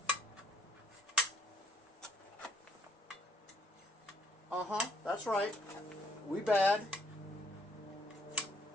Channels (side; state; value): both; normal; correlation 0.66